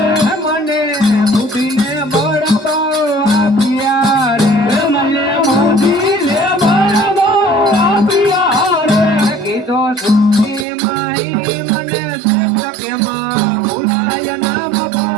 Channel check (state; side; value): drops out; left; at 10.7 s